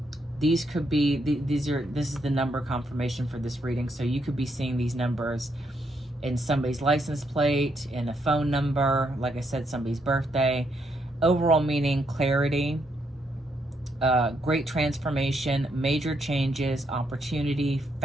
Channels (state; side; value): normal; both; correlation 0.76